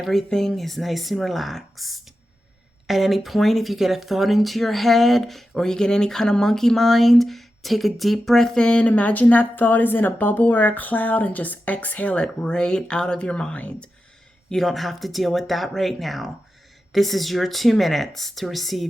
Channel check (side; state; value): both; normal; correlation 0.91